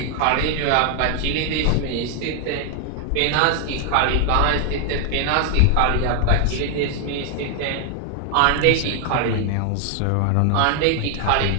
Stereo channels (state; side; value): different; both; correlation 0.00